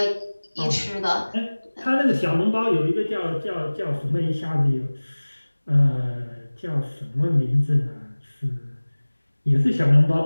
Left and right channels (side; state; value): both; inverted; correlation -1.00